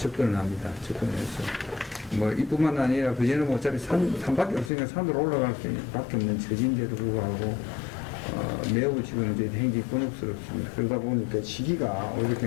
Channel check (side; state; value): right; drops out; at 4.7 s